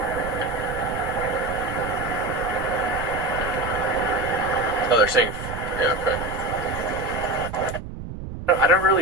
Oh, they're saying, yeah, okay. I don't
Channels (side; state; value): right; noise; rumble, 9 dB below the sound